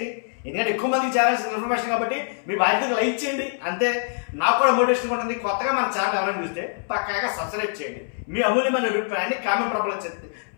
ఎందుకంటే ఎక్కువ మందికి చేరాల్సిన ఇన్ఫర్మేషన్ కాబట్టి మీ బాధ్యతగా లైక్ చేయండి. అంతే, నాకు కూడా మోటివేషన్ ఉంటుంది. కొత్తగా మన ఛానల్ ఎవరైనా చూస్తే పక్కాగా సబ్స్క్రైబ్ చేయండి. మీ అమూల్యమైన అభిప్రాయాన్ని కామెంట్ రూపంలో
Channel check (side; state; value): right; silent; 62 dB below the other